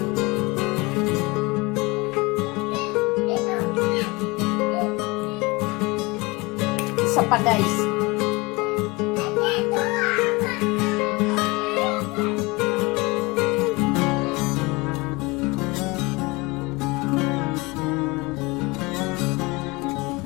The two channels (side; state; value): right; quieter; 24.6 dB